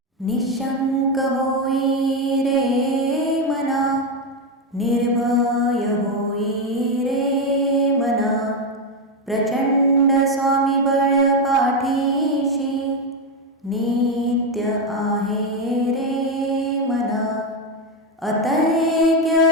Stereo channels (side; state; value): both; normal; correlation 0.09